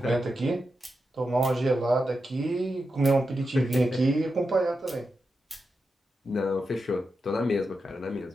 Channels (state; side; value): normal; both; correlation 0.88